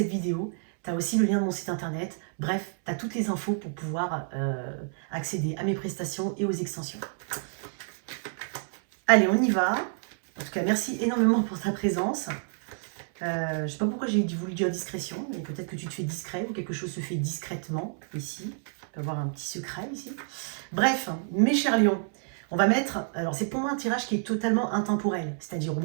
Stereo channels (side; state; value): left; silent; 59 dB below the other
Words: vidéo. Tu as aussi le lien de mon site internet. Bref, tu as toutes les infos pour pouvoir accéder à mes prestations et aux extensions. Allez, on y va. En tout cas, merci énormément pour ta présence. Je ne sais pas pourquoi j'ai voulu dire discrétion, mais peut-être que tu te fais discret ou quelque chose se fait discrètement ici. On peut avoir un petit secret ici. Bref, mes chers lions, on va mettre... Alors, c'est pour moi un tirage qui est totalement intemporel. C'est-à-dire, au